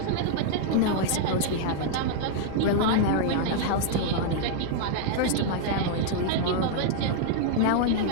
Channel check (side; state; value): both; different; correlation -0.01